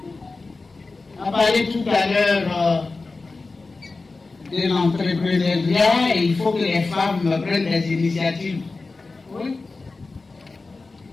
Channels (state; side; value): quieter; right; 3.7 dB